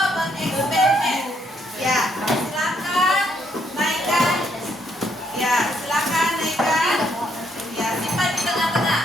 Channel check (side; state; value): both; normal; correlation 0.72